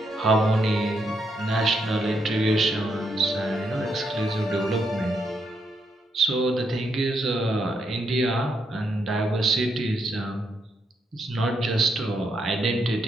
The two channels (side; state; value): both; normal; correlation 0.78